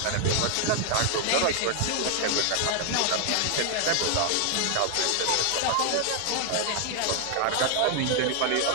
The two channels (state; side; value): different; both; correlation 0.00